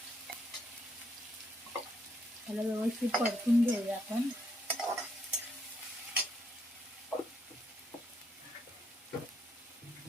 त्याला व्यवस्थित परतून घेऊया आपण.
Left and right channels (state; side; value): normal; both; correlation 0.74